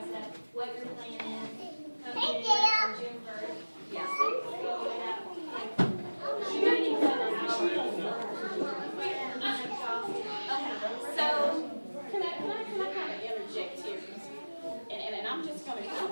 step, what your plan is, come January or June 1st. Yes. Go over that. You don't need to know the So, Can I kind of interject here? And I'm just going to kind of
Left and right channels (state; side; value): inverted; both; correlation -1.00